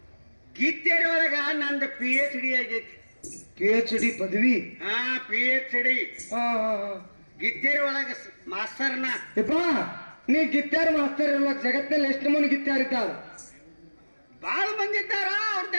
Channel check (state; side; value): inverted; both; correlation -1.00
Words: ಗೀತೆರೊಳಗ ನಂದು PhD ಆಗೈತಿ PhD ಪದವಿ ಹಾ PhD ಹಾ ಹಾ ಹಾ ಗಿತ್ತೇರಿ ಒಳಗ ಮಾಸ್ತರ್ನ ಯಪ್ಪ ನೀ ಗಿತ್ತಾರ್ ಮಾಸ್ತರ್ ಇರ್ಲಕ್ ಜಗತ್ತಲ್ಲಿ ಎಷ್ಟು ಮಂದಿ ಗಿತ್ತಾರ್ ಇದ್ದಾರ ಬಾಳ ಮಂದಿ ಇದ್ದಾರ